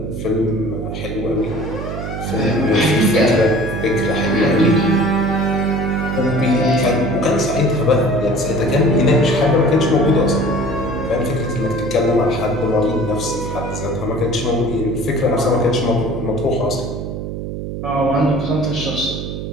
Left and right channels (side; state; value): right; noise; hum, 6 dB below the sound